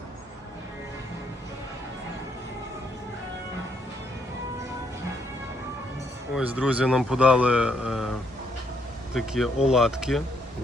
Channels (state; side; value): normal; both; correlation 0.73